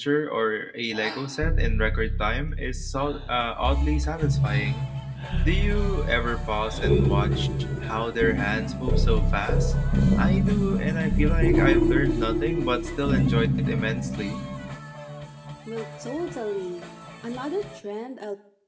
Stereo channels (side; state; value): both; identical; correlation 1.00